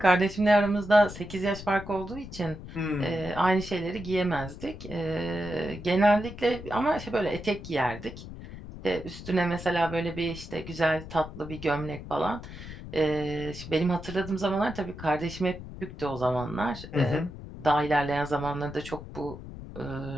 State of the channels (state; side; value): noise; left; rumble, 12 dB below the sound